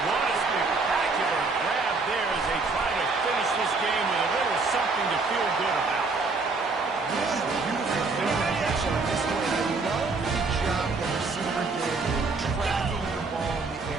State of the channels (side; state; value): left; quieter; 4.0 dB